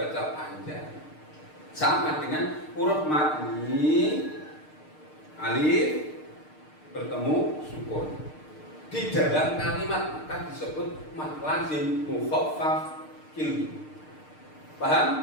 panjang. Sama dengan huruf mad ini, alif bertemu sukun. Di dalam kalimat maka disebut mad lazim mukhaffaf kilmi.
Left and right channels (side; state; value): right; late; 6.6 ms